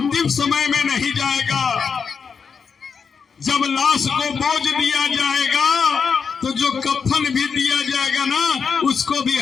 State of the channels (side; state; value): right; quieter; 6.0 dB